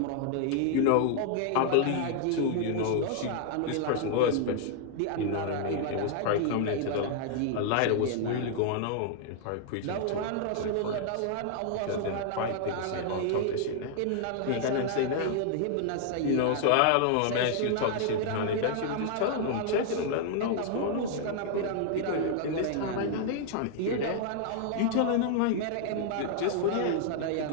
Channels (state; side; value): different; both; correlation 0.00